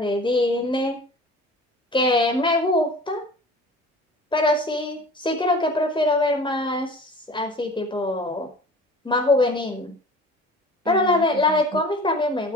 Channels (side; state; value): both; normal; correlation 0.42